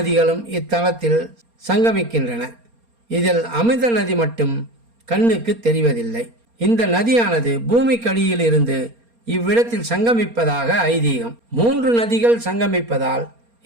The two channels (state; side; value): late; left; 4.3 ms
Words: இத்தலத்தில் சங்கமிக்கின்றன. இதில் அமிர்த நதி மட்டும் கண்ணுக்கு தெரிவதில்லை. இந்த நதியானது பூமிக்கடியில் இருந்து இவ்விடத்தில் சங்கமிப்பதாக ஐதீகம். 3 நதிகள் சங்கமிப்பதால்